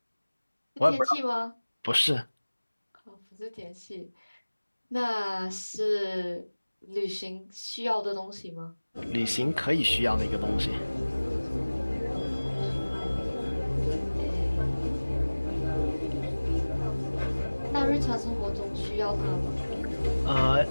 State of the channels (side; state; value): both; inverted; correlation -1.00